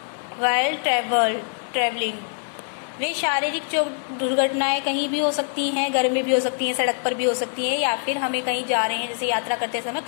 वाइल ट्रेवलिंग। वे शारीरिक दुर्घटनाएं कहीं भी हो सकती हैं, घर में भी हो सकती हैं, सड़क पर भी हो सकती हैं, या फिर हमें कहीं जा रहे हैं जैसे यात्रा करते समय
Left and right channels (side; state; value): right; silent; digital silence